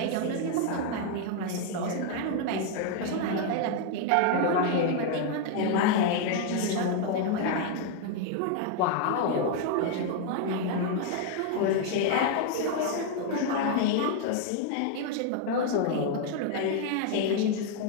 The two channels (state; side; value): different; both; correlation 0.00